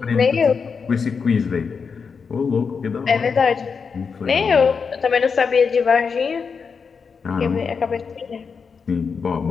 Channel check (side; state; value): right; quieter; 5.6 dB